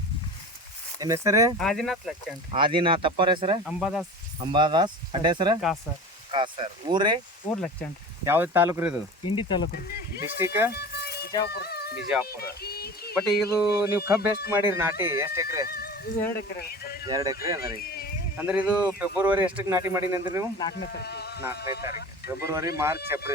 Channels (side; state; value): both; normal; correlation 0.35